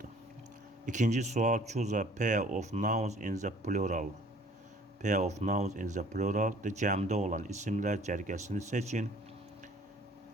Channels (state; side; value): normal; both; correlation 0.54